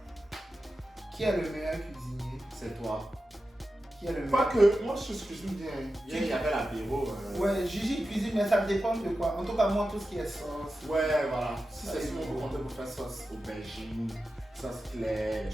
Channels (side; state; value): both; normal; correlation 0.92